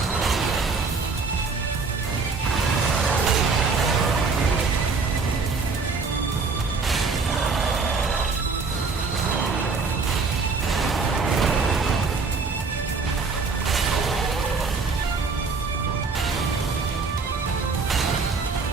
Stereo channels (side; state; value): left; quieter; 4.5 dB